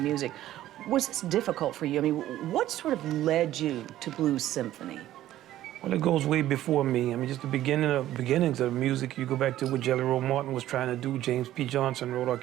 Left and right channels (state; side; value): quieter; left; 13.6 dB